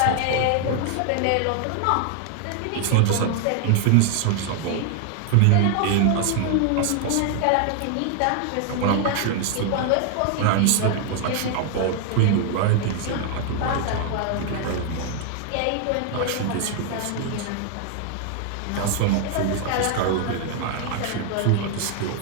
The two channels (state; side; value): different; both; correlation 0.00